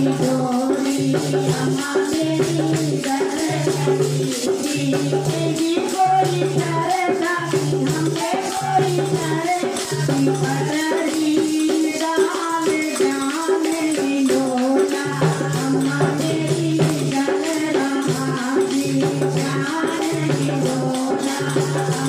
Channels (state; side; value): identical; both; correlation 1.00